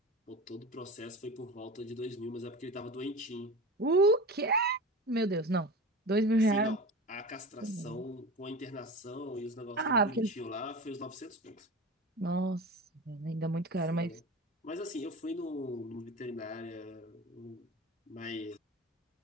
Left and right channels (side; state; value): both; normal; correlation 0.30